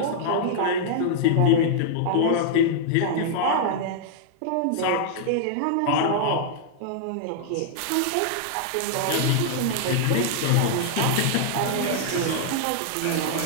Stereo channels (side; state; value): both; different; correlation -0.01